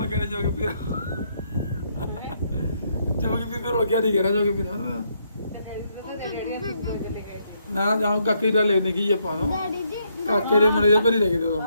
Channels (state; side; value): inverted; both; correlation -0.74